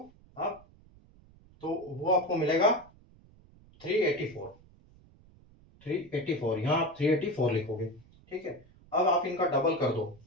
आप, तो वो आपको मिलेगा 384। 384, यहाँ आप 384 लिखोगे। ठीक है, अब आप इनका डबल कर दो,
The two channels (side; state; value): right; noise; rumble, 26 dB below the sound